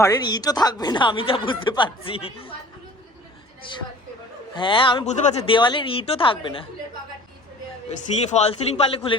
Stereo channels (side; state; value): both; normal; correlation 0.46